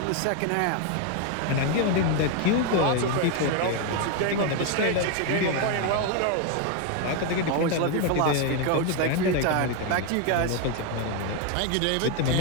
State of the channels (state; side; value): different; both; correlation 0.01